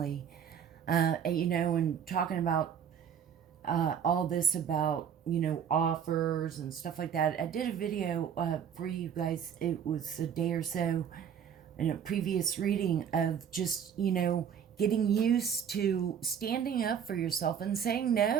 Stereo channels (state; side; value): quieter; left; 8.2 dB